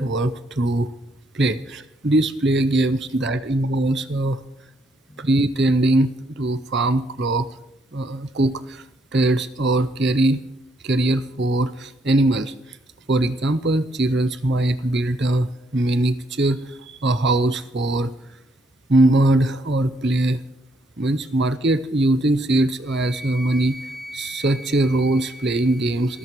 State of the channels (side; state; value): both; normal; correlation 0.72